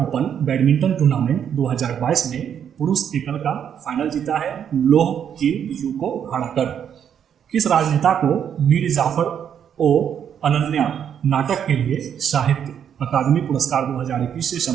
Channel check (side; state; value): left; quieter; 8.6 dB